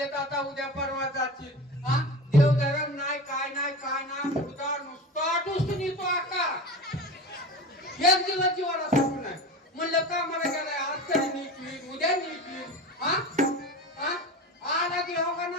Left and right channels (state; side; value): normal; both; correlation 0.31